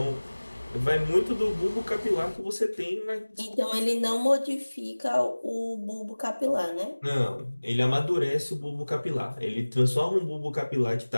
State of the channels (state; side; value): inverted; both; correlation -1.00